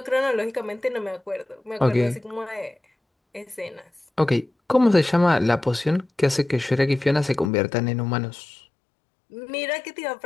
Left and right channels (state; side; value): drops out; right; at 7.5 s